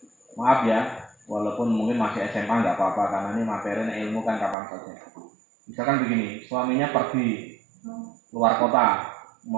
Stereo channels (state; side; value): drops out; left; at 4.5 s